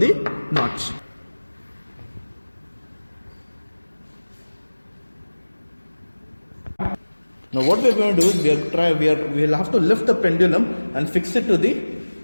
notch. Now what we are going to do is we will have to lift the pendulum and fix it to the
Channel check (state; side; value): inverted; both; correlation -1.00